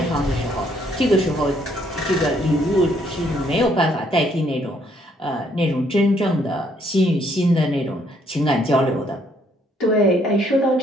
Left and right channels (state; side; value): normal; both; correlation 0.68